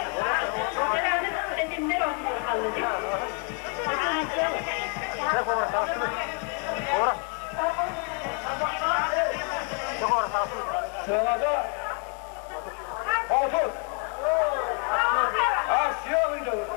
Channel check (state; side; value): quieter; right; 38.8 dB